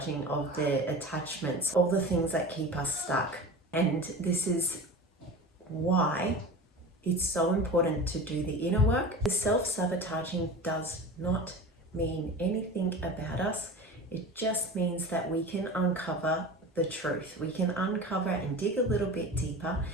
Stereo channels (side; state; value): both; normal; correlation 0.32